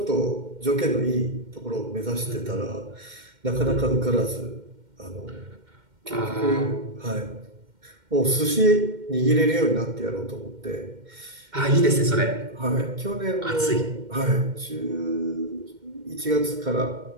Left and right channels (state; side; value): late; left; 2.1 ms